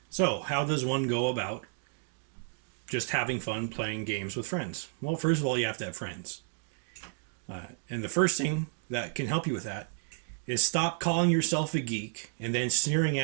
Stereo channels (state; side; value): silent; left; digital silence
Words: So, how does one go about just having fun playing games with friends? Well, first of all, you have to have friends. And the first thing that can help you with that is stop calling yourself a geek and then sneering